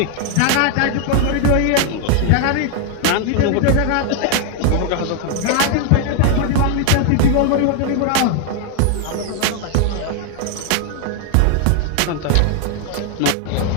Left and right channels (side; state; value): both; different; correlation 0.00